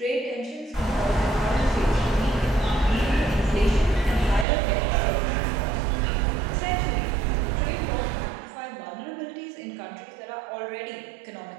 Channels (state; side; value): drops out; left; at 4.5 s